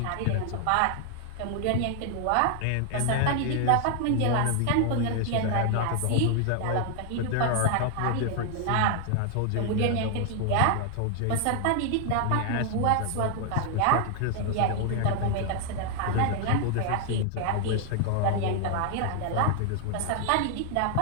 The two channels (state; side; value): different; both; correlation 0.00